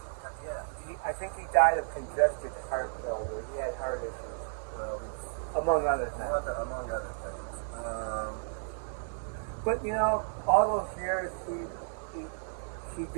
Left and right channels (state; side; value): silent; left; digital silence